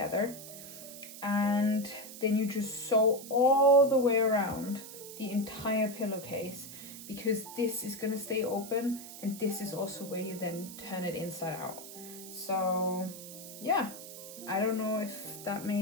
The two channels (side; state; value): right; noise; hiss, 13 dB below the sound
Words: and then you just sew all the way around the entire pillowcase, because this is going to stay open, and this is also where you then turn it inside out. So yeah, I don't know if that